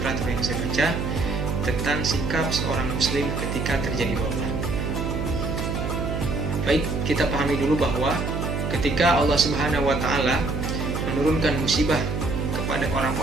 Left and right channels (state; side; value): noise; right; hum, 2 dB below the sound